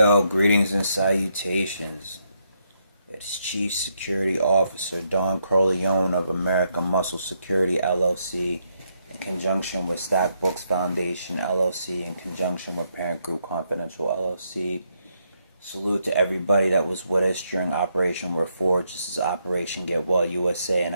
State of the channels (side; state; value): both; inverted; correlation -0.78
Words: greetings and salutations. It's Chief Security Officer Don Corleone of American Muscle Security LLC in conjunction with Stack Books Foundation LLC in conjunction with Parent Group Confidential LLC. Salute to everybody that was with us during Operation Reforge. This is Operation Get Well USA, and